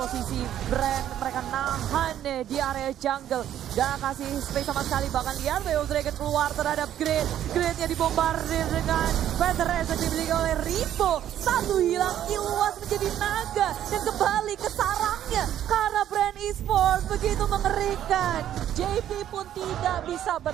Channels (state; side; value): quieter; left; 11.1 dB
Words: brand. Mereka nahan deh di area jungle. Gak kasih space sama sekali. Bahkan lihat Way of Dragon keluar terhadap Grid. Gridnya dibombardir dengan Featheress yang dimiliki oleh Ripo. Satu hilang, Iluas menjadi naga. Dan kembali ke sarangnya. Karena brand Esports begitu mengerikan. JP pun tidak bisa